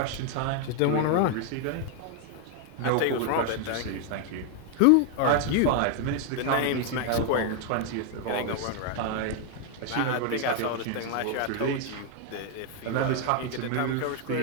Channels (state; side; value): different; both; correlation 0.00